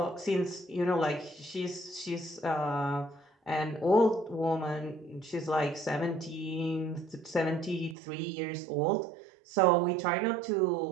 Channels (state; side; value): drops out; left; at 8.0 s